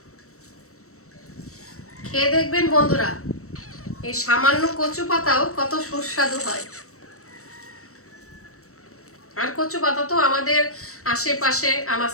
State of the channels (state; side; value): late; right; 0.64 ms